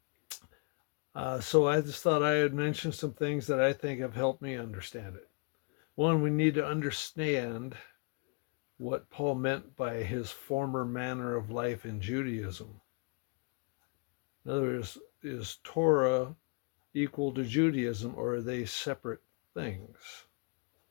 So I just thought I would mention some things that I think have helped me understand it. One, we need to understand what Paul meant by his former manner of life in Judaism. In other words, is Torah equal to Judaism, or are they separate things?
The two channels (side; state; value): right; quieter; 34.2 dB